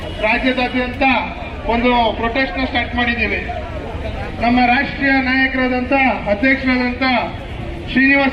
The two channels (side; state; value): both; identical; correlation 1.00